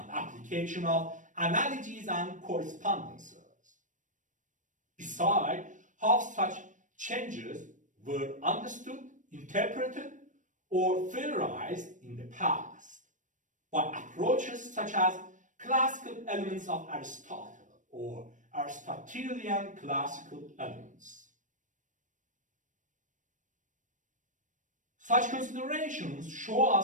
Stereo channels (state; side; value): late; left; 0.37 ms